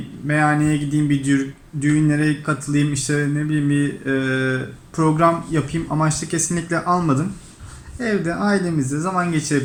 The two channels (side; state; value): both; identical; correlation 1.00